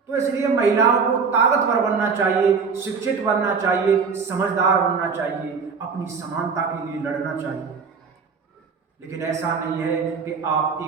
तो इसलिए महिलाओं को ताकतवर बनना चाहिए, शिक्षित बनना चाहिए, समझदार बनना चाहिए, अपनी समानता के लिए लड़ना चाहिए। लेकिन ऐसा नहीं है कि आप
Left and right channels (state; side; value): quieter; left; 5.4 dB